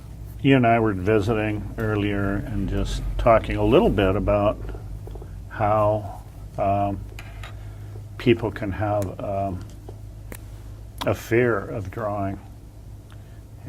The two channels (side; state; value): both; identical; correlation 1.00